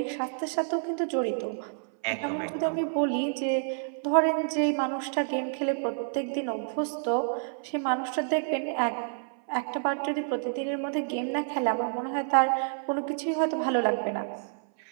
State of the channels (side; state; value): left; silent; 59 dB below the other